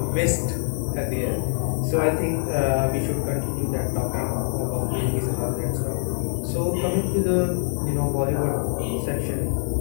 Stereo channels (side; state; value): right; silent; 58 dB below the other